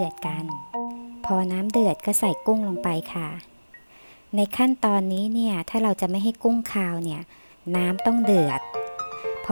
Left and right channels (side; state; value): both; inverted; correlation -1.00